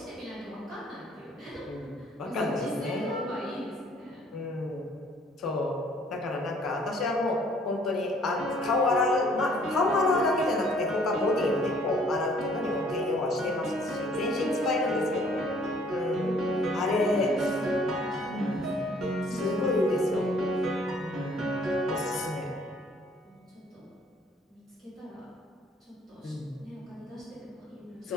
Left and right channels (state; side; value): normal; both; correlation 0.59